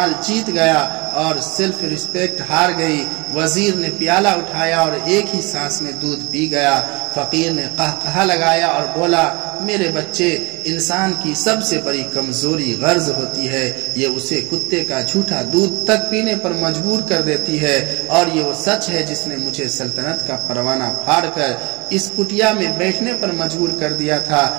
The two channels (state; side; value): quieter; left; 26.5 dB